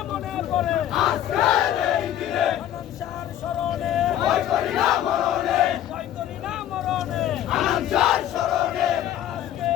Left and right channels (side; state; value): right; quieter; 11.7 dB